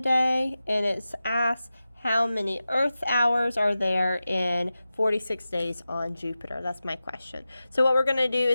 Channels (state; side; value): inverted; both; correlation -0.94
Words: day, and it's asked how many Earth hours are there in 46 days on Jupiter? That's my question. So what we're going to do